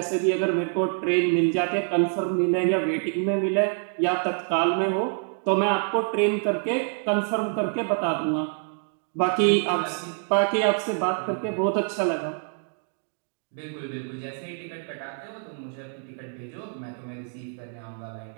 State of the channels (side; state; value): left; silent; 57 dB below the other